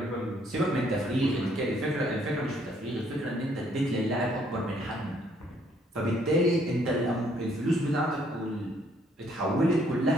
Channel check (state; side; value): normal; both; correlation 0.66